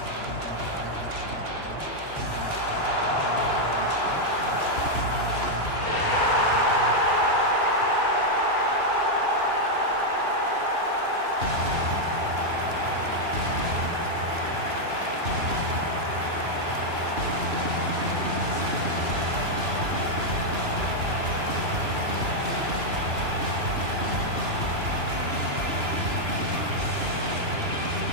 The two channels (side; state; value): left; late; 2.9 ms